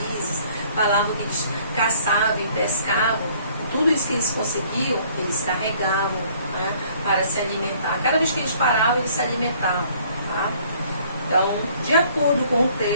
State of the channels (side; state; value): both; inverted; correlation -0.58